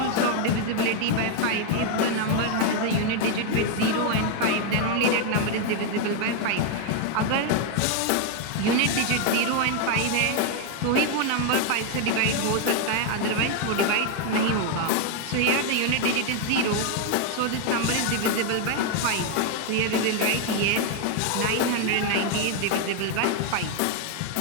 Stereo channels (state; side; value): different; both; correlation 0.01